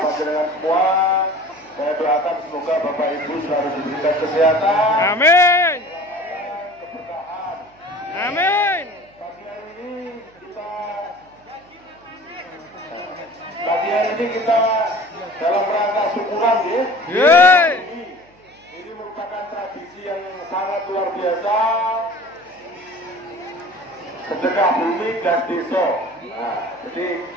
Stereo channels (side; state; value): right; noise; hum, 30 dB below the sound